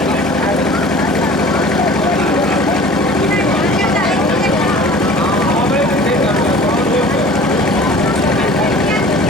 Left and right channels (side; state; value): both; normal; correlation 0.45